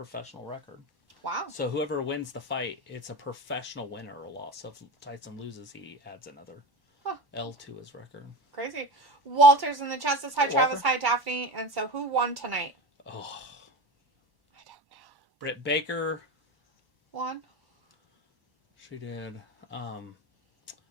record. Wow. So whoever wins the fight, it's a professional win or a loss. So if Tyson loses, he adds another L to his record. Crazy. Walter's in the chat says, hi, Hey, Travis, Walter. hi, Daphne. And so who won tonight? Oh. I don't know. Britt Baker. Won? She did.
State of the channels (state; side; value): late; left; 1.1 ms